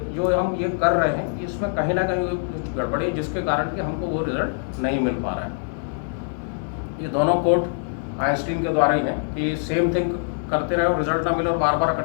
जो हम ये कर रहे हैं इसमें कहीं ना कहीं कुछ गड़बड़ी है जिसके कारण कि हमको वो रिजल्ट नहीं मिल पा रहा है। ये दोनों कोट आइंस्टीन के द्वारा ही है कि सेम थिंग करते रहे और रिजल्ट ना मिले और बार बार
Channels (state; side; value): silent; right; 63 dB below the other